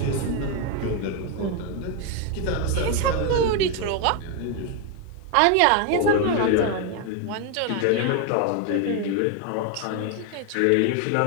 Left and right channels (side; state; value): both; different; correlation 0.01